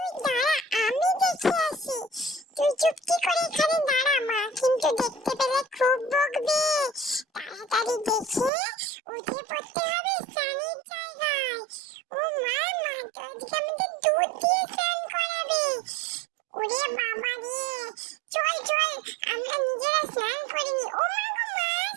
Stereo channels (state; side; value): drops out; left; at 8.5 s